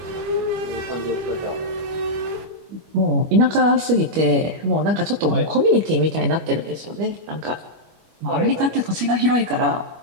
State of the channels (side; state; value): left; late; 25 ms